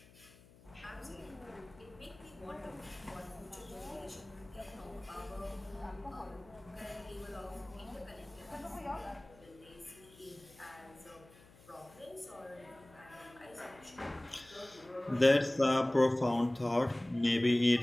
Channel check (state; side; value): noise; left; hum, 24 dB below the sound